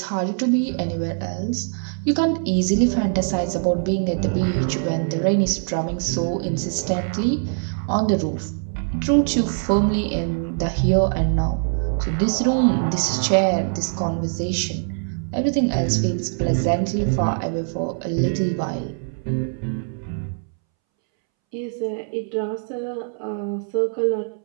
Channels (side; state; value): left; silent; 64 dB below the other